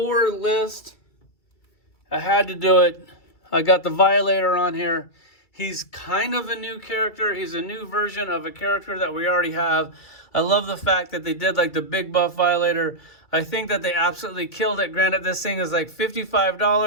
list. I had to do it. I got the Violator on here. He's kind of a new character. He's a new version of a character that we already have. I love the fact that they did like the big buff Violator. I think that they absolutely killed it. Granted, this thing is like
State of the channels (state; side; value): late; right; 2.3 ms